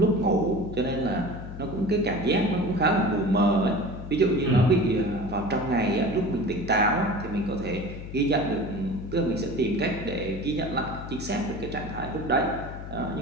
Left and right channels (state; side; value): noise; left; hum, 10 dB below the sound